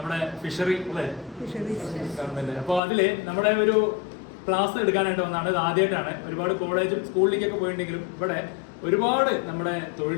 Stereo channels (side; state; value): right; drops out; at 2.8 s